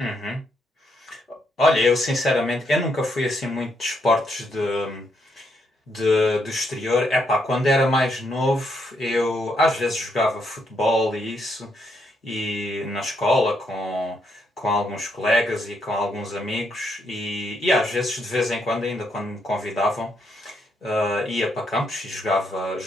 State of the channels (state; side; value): normal; both; correlation 0.77